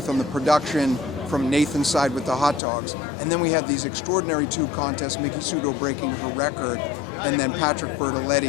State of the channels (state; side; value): drops out; right; at 2.6 s